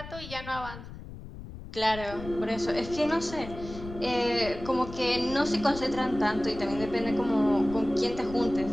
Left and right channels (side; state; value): left; noise; rumble, 13 dB below the sound